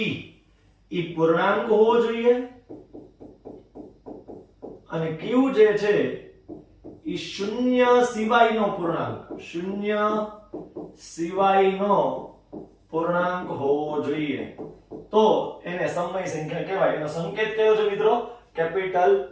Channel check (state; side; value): identical; both; correlation 1.00